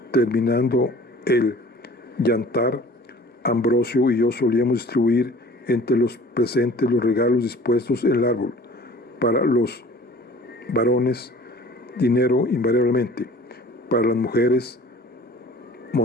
Terminando el yantar, Ambrosio y yo solíamos distribuir entre los presentes los regalos dispuestos en el árbol. Para los varones, dinero invariablemente. Para las mujeres,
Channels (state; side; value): normal; both; correlation 0.47